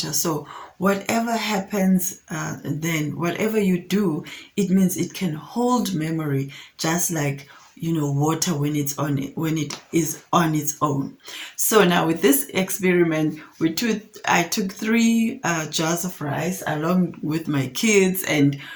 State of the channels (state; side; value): identical; both; correlation 1.00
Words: So whatever happens, then whatever you do, it means it can hold memory, just like water when it is on its own. So now with this experiment, I took 3 jars of rice along with my kids, and